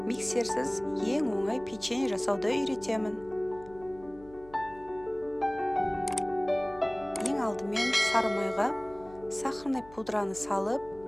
миксерсіз ең оңай печенье жасауды үйретемін. Ең алдымен сары майға сахарный пудраны салып,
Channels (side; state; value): left; noise; hum, 22 dB below the sound